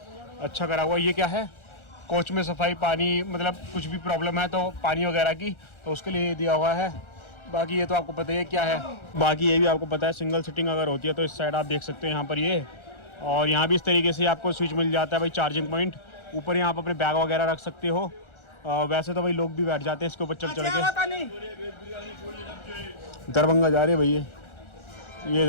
अच्छा करा हुआ। ये क्या है, कोच में सफाई, पानी, मतलब कुछ भी प्रॉब्लम है तो पानी वगैरह की, तो उसके लिए दिया हुआ है। बाकी ये तो आपको पता ही है क्या है। बाकी ये भी आपको पता है, सिंगल सीटिंग अगर होती है तो इस साइड आप देख सकते हैं यहाँ पर ये। और यहाँ भी इस तरीके से आपको स्विच मिल जाता है भाई, चार्जिंग पॉइंट। ऊपर यहाँ पर अपने बैग वगैरह रख सकते हो। वैसे तो भाई लोग भी बैठ जाते हैं इसके ऊपर चढ़ चढ़ के। दरभंगा जा रही है भैया, ये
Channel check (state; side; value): late; right; 1.4 ms